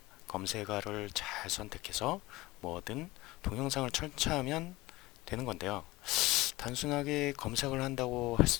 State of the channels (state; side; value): quieter; right; 19.7 dB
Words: 검색어를 잘 선택해서 뭐든 동영상을 설치하면 되는 건데요. 단순하게 검색을 한다고 할